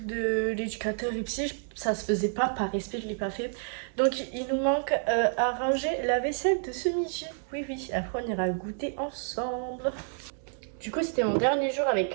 de l'éducateur et psy, ça se faisait pas par respect, je l'ai pas fait. Donc il nous manque à ranger la vaisselle de ce midi. Oui, oui, après on ira goûter ensemble. Du coup, c'était mon dernier jour avec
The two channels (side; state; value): left; silent; 58 dB below the other